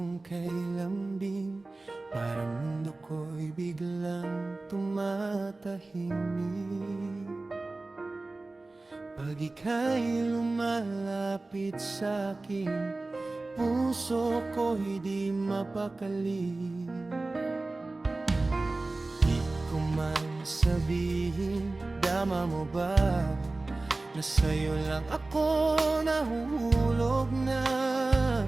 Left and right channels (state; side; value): quieter; left; 3.2 dB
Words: kay lambing, parang mundo ko'y biglang tumatahimik. Pag ika'y lumalapit sa'kin, puso ko'y di mapakali. Di ko man sabihin, dama mo ba na sa'yo lang ako nahuhulog na?